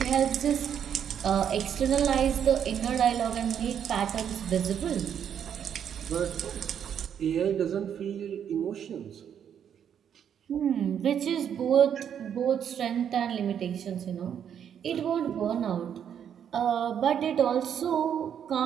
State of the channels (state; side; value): quieter; left; 8.7 dB